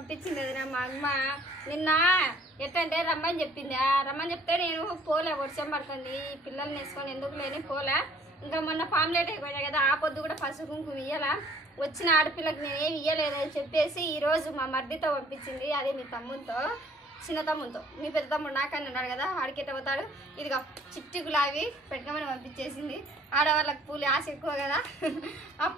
వదిన మా అమ్మ నిన్న ఎట్టంటే రమ్మని చెప్పింది రమ్మని చెప్తే నేను పోలే వర్షం పడుతుంది పిల్లల్ని వేసుకొని ఎందుకు లేని పోలే ఇంకా మొన్న ఫామ్లేట్ అయిపోయినాయి కదా ఆ పొద్దు కూడా పసుపు కుంకుమ ఇయ్యాల వచ్చిన ఆడపిల్లకి నేనేమి ఇయ్యలేదని చెప్పేసి ఈరోజు మా మర్దితో పంపించింది అదే మీ తమ్ముతో చిన్న తమ్ముతో మీ పెద్ద తమ్ముడు నాకని అన్నాడు కదా ఆడికెట్ట పోతాడు ఇదిగా చిట్టి గులాబీ పెట్టుకోమని పంపించేసింది ఆడవాళ్ళకి పూలు ఆశ ఎక్కువ కదా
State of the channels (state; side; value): normal; both; correlation 0.57